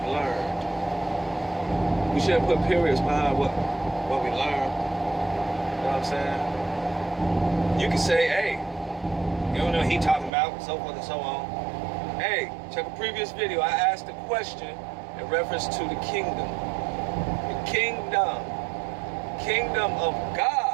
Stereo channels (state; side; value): drops out; left; at 10.3 s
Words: learned. We shouldn't put periods behind what we learn. You know what I'm saying? You can say, hey, you don't know what he talking about, so forth and so on. Hey, check a previous video. I asked a question in reference to the kingdom. The kingdom of